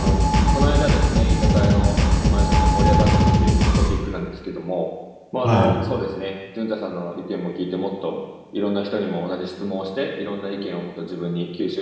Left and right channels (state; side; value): identical; both; correlation 1.00